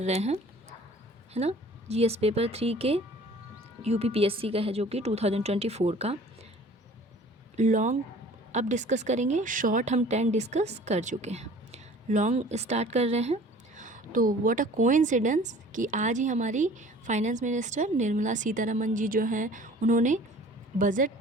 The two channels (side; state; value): both; normal; correlation 0.49